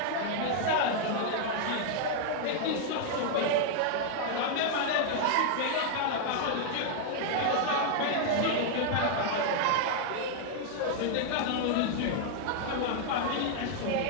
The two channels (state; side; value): different; both; correlation 0.00